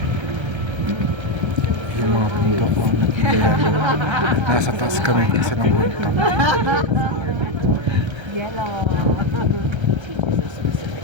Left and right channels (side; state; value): left; late; 1.3 ms